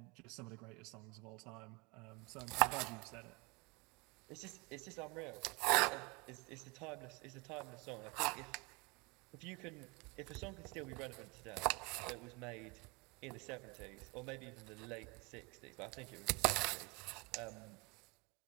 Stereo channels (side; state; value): left; quieter; 28.0 dB